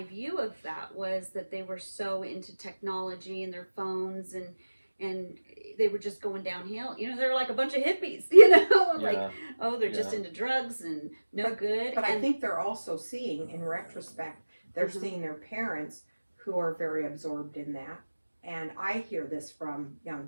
view of that was that they were so into technology and their phones, and they were just going downhill. They're like a bunch of hippies, like, yeah, oh, they're just Yeah. into drugs and no good. But I and think they're also seeing, in retrospect, they're Mhm. seeing their parents who are very absorbed in that. And I hear this from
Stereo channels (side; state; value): both; inverted; correlation -1.00